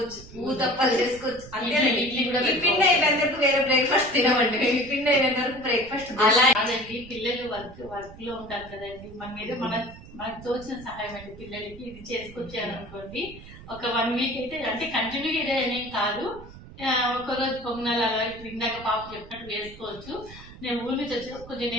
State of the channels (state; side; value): noise; right; rumble, 17 dB below the sound